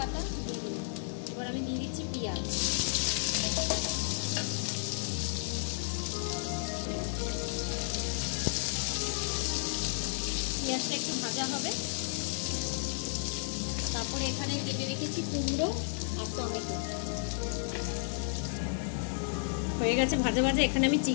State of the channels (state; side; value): silent; right; digital silence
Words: दिए दिलाम, এবার আমি দিয়ে দিচ্ছি পেঁয়াজ। পেঁয়াজটা একটু ভাজা হবে, তারপরে এখানে কেটে রেখেছি কুমড়ো আর টমেটো। হয়ে গেছে ভাজা ভাজা। এখানে আমি